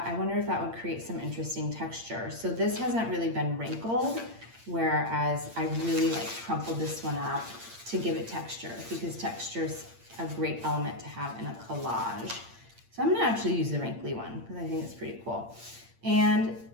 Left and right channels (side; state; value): left; late; 8.8 ms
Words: I wonder if that would create some interesting texture. So this hasn't really been wrinkled, whereas I really crumpled this one up to give it texture, because texture's a great element to have in a collage. So I'm gonna actually use the wrinkly one because I think it's pretty cool. And